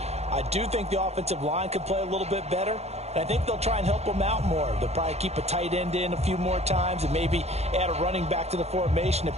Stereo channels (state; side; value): late; left; 0.31 ms